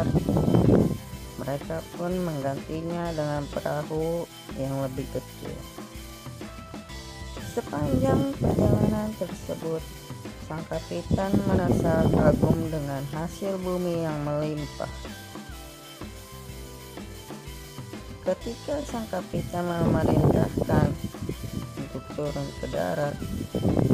mereka pun menggantinya dengan perahu yang lebih kecil. Sepanjang perjalanan tersebut, sang kapitan merasa kagum dengan hasil bumi yang melimpah. Ketika sang kapitan memerintahkan untuk turun ke darat,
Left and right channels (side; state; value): both; identical; correlation 1.00